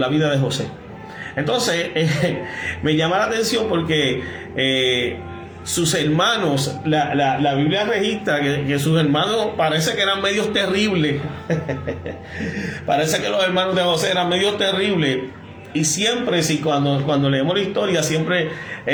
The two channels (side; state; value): both; identical; correlation 1.00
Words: vida de José. Entonces me llama la atención porque sus hermanos, la Biblia registra que sus hermanos parece que eran medios terribles. Parece que los hermanos de José eran medios terribles. Y siempre, cuando leemos la historia, siempre